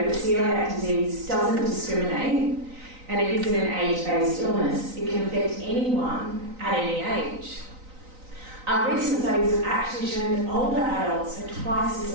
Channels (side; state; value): left; late; 3.9 ms